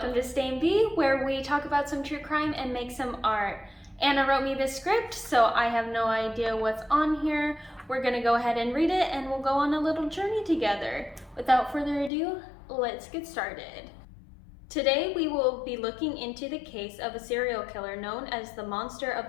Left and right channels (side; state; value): right; drops out; at 12.1 s